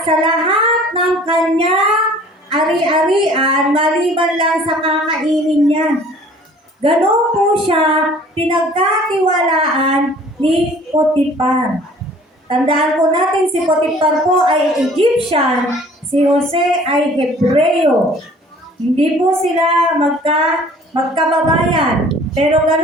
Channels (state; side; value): normal; both; correlation 0.51